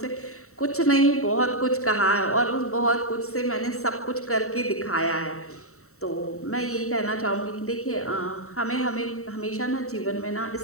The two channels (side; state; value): right; late; 0.64 ms